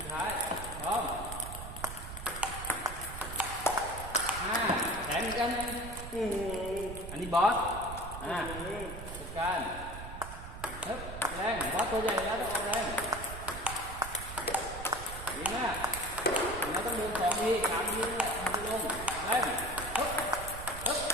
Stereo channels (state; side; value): noise; right; rumble, 10 dB below the sound